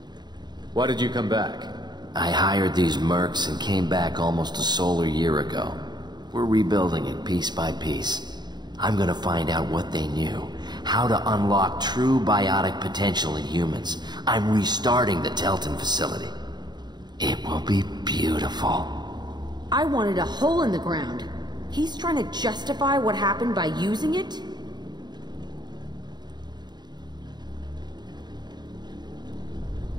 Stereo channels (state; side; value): late; left; 0.21 ms